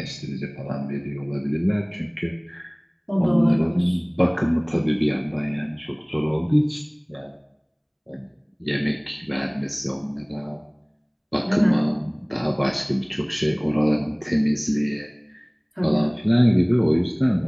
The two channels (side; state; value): both; identical; correlation 1.00